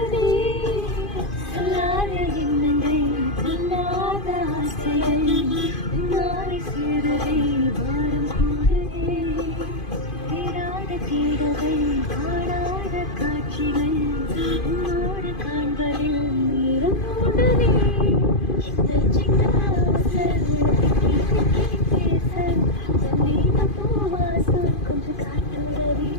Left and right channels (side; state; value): right; late; 2.5 ms